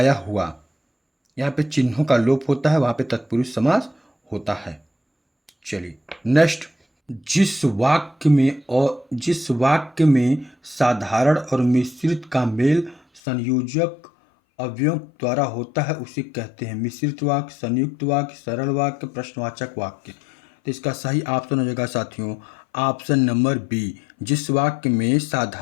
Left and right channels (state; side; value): drops out; right; at 13.2 s